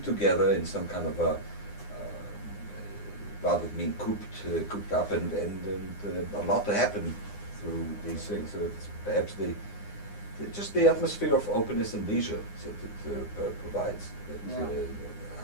together in some kind of a, rather than being cooped up, and a lot to happen through these things. So it's perhaps just the atmosphere of openness and leisure that it provides, that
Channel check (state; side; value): late; right; 9.8 ms